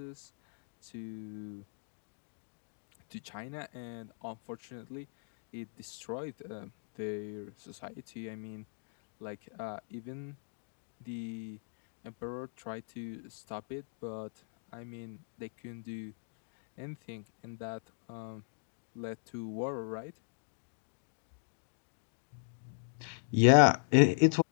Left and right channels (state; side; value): silent; right; digital silence